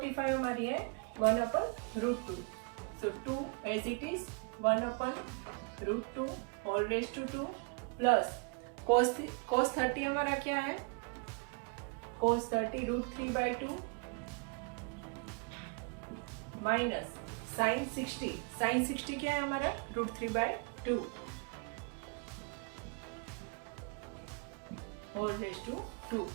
हमारी है 1/√2। So 2 as it is 1/√2 whole raise to 2 plus cos 30 हमारा क्या है, cos 30 √3/2 माइनस sin 60 क्या है हमारा √3/2 whole raise to 2।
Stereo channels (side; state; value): left; quieter; 34.5 dB